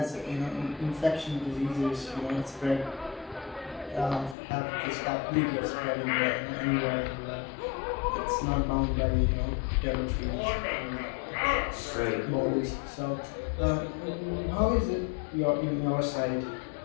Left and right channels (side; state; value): right; drops out; at 4.4 s